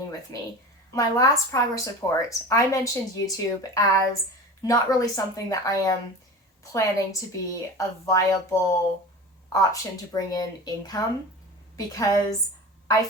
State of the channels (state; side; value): normal; both; correlation 0.33